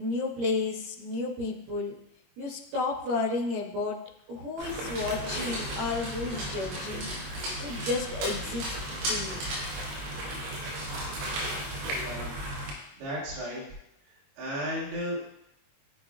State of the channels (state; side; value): late; left; 21 ms